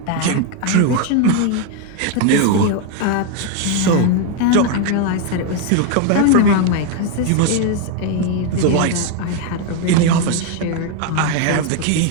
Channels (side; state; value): both; different; correlation 0.01